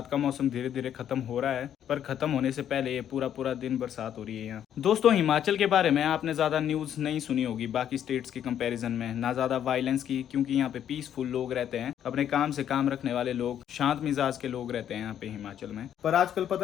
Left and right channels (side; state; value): right; quieter; 10.0 dB